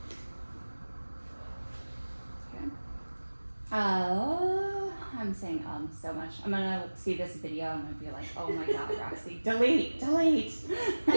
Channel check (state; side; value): inverted; both; correlation -1.00